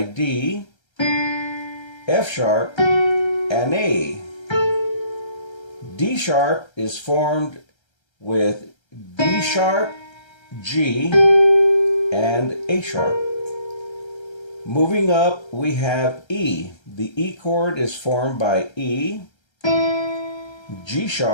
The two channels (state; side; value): late; right; 1.3 ms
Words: D, F sharp, and A. D sharp is formed with D sharp, G, and A sharp. Moving up, we have E. The E chord is formed by E, G